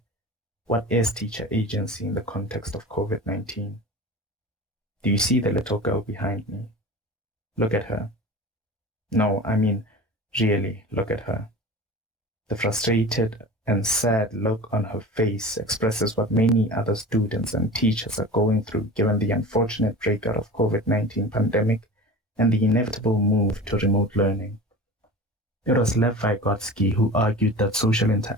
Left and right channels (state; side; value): normal; both; correlation 0.35